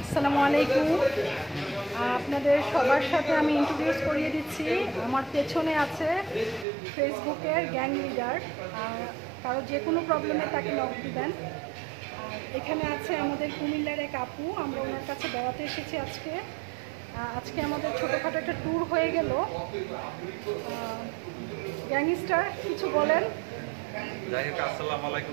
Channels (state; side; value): drops out; left; at 6.7 s